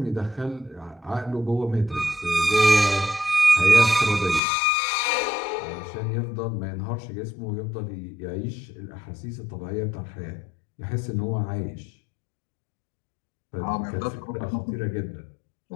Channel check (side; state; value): right; drops out; at 4.4 s